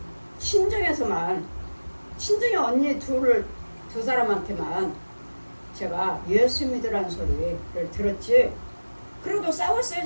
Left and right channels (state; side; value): inverted; both; correlation -1.00